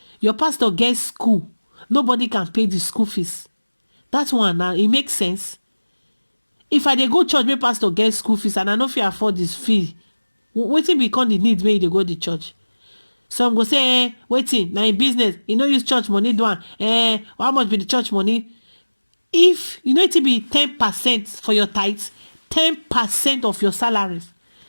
Your pastor gets school. Nobody can pay the school fees. That's one now. It makes sense. If I dey go church, my pastor gets school fees and I know if you afford this fee, waiting become the need may they go to church. Some go say, waiting, now in business, you know use church money do one. How much be the church money? If you know it to be 10% for your tithes, 10% of your salaries.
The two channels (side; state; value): both; inverted; correlation -1.00